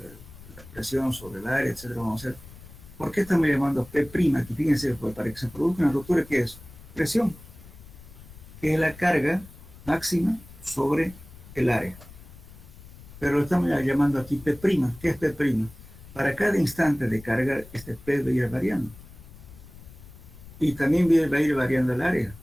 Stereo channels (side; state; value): left; noise; rumble, 19 dB below the sound